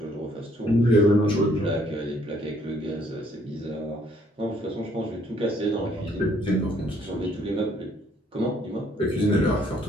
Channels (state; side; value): normal; both; correlation 0.65